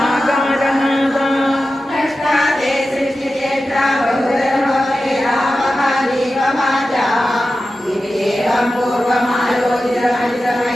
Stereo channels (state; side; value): normal; both; correlation 0.93